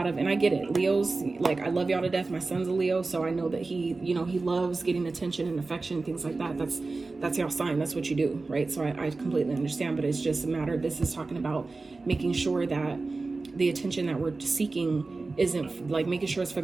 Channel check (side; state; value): left; quieter; 3.6 dB